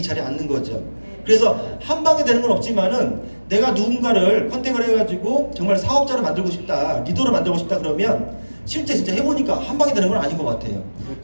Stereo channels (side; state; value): both; inverted; correlation -1.00